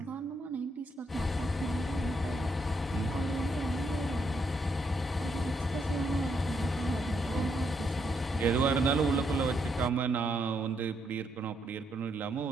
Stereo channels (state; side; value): normal; both; correlation 0.77